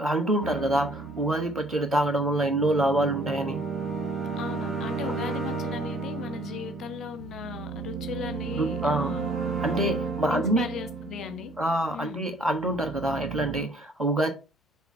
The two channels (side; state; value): both; normal; correlation 0.58